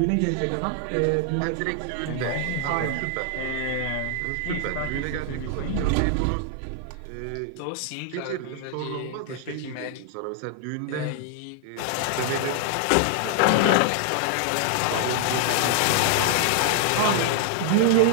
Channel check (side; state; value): both; different; correlation 0.00